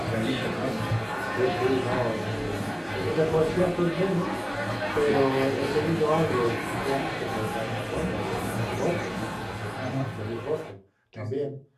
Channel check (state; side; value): identical; both; correlation 1.00